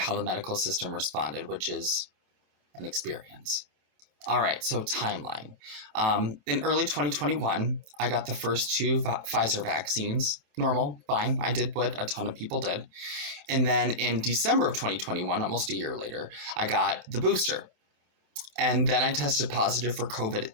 the medical system responded, which is an experience. All right, so timeline. In early 2021, I got the first two Pfizer vaccines. Normal, fine. I did what a ton of people did. And then in December of 2021, almost a year later, I got the booster. And then I tested positive for COVID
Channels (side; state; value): left; late; 27 ms